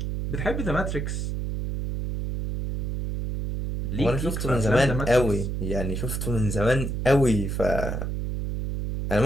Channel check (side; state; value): right; noise; hum, 3 dB below the sound